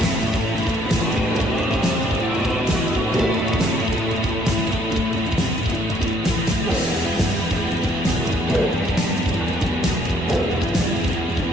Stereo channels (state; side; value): normal; both; correlation 0.65